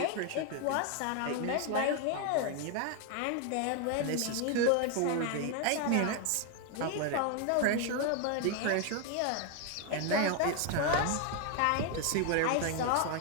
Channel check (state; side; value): different; both; correlation 0.01